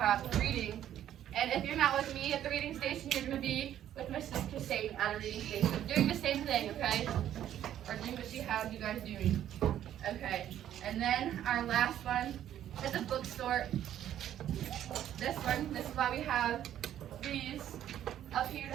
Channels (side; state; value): left; quieter; 11.2 dB